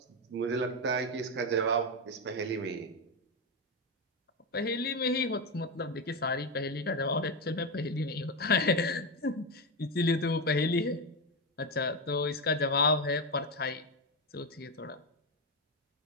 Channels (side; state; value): both; normal; correlation 0.11